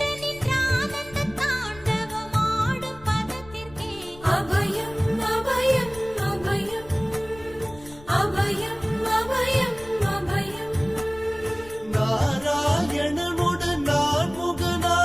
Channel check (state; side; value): noise; left; rumble, 20 dB below the sound